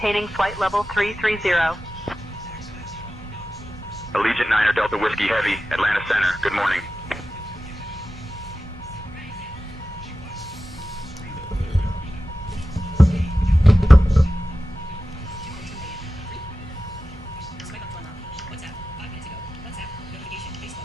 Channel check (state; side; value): normal; both; correlation 0.94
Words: flight level 330. Allegiant Niner Delta Whiskey Heavy, Atlanta Center. Good morning.